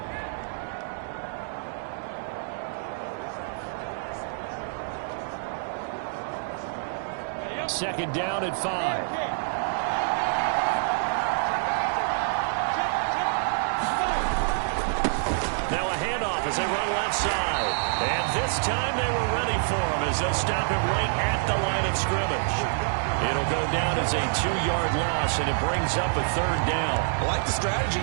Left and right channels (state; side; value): silent; left; digital silence